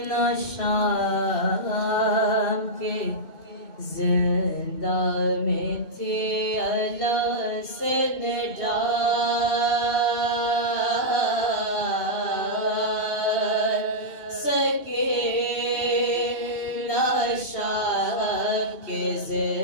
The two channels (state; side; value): late; right; 2.8 ms